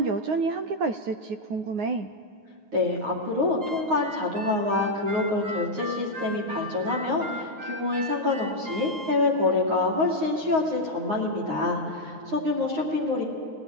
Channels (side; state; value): left; late; 9.5 ms